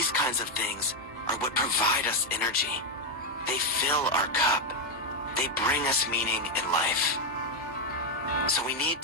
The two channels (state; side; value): normal; both; correlation 0.04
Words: kinds of things are what provide us energy. They fill our cup. They bring us meaning in life. So we need